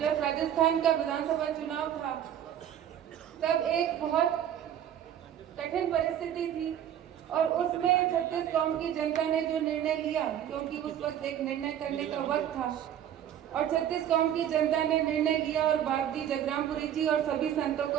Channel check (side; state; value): left; quieter; 10.3 dB